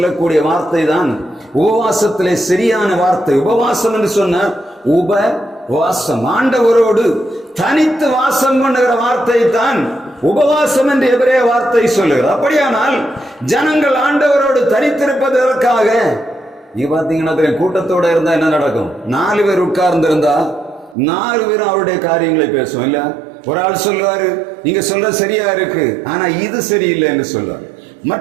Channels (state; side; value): drops out; left; at 21.0 s